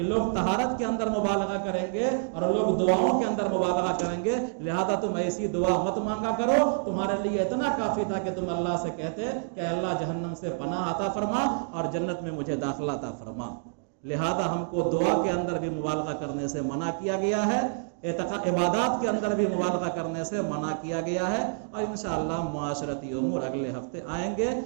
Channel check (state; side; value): silent; left; digital silence